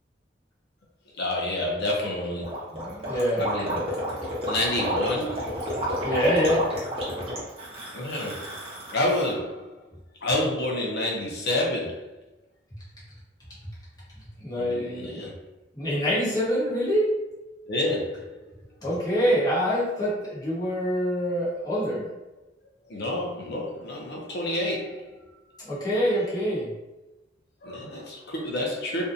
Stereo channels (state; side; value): normal; both; correlation 0.36